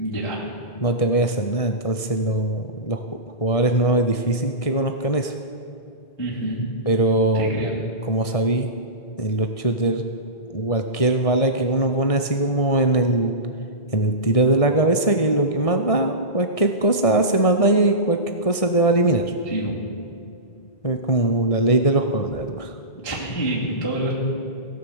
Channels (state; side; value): late; right; 1.6 ms